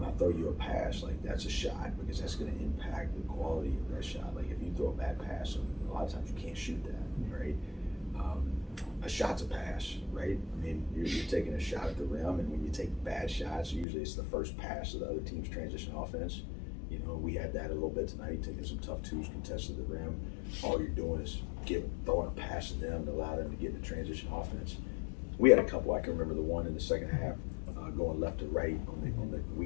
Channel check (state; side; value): drops out; right; at 13.9 s